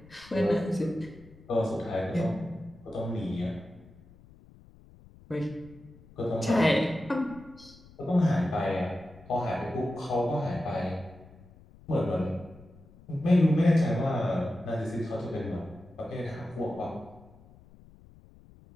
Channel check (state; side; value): noise; left; rumble, 23 dB below the sound